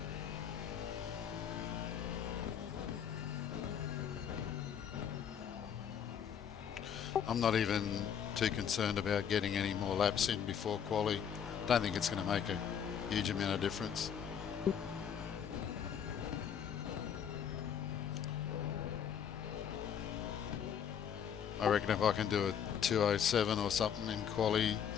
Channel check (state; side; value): quieter; right; 8.2 dB